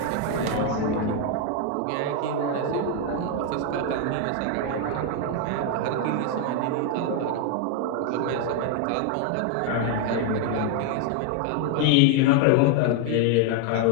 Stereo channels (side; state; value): both; different; correlation 0.01